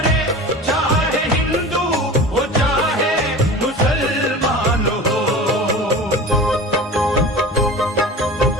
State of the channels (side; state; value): both; normal; correlation 0.35